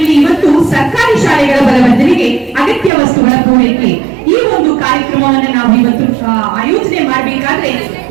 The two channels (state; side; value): drops out; left; at 2.9 s